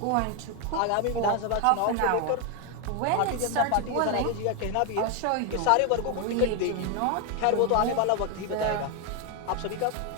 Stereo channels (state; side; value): different; both; correlation 0.01